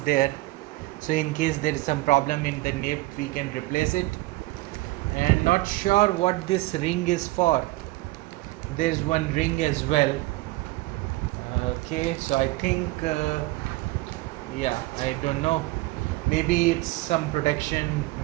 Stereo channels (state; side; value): quieter; left; 20.0 dB